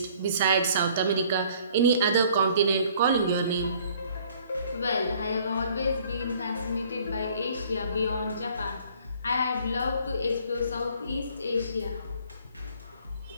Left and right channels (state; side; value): inverted; both; correlation -0.57